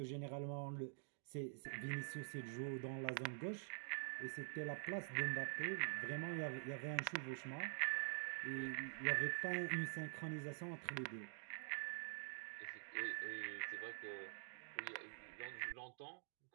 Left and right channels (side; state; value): left; silent; digital silence